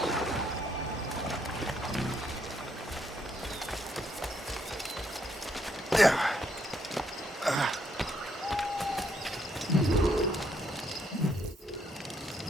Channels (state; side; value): normal; both; correlation 0.73